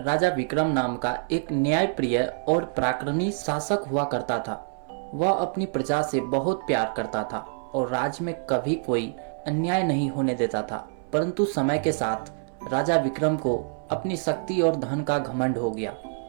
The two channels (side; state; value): left; silent; 61 dB below the other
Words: विक्रम नाम का एक न्यायप्रिय और पराक्रमी शासक हुआ करता था। वह अपनी प्रजा से बहुत प्यार करता था और राज्य में कभी कोई अन्याय नहीं होने देता था। परंतु समय के साथ राजा विक्रम को अपनी शक्ति और धन का घमंड हो गया।